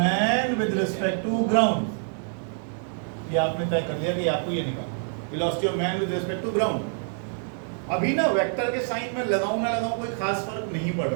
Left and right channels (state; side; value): silent; left; 61 dB below the other